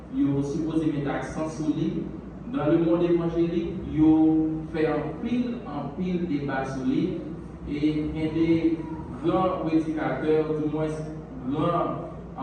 ils sont supposés mettre accent sur lui. Dans le monde évangélique, ils ont fait un pile débat sur lui, et il y a des grands prédicateurs, du moins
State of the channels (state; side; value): identical; both; correlation 1.00